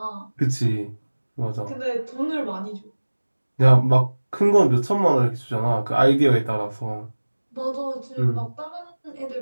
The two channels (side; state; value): both; inverted; correlation -1.00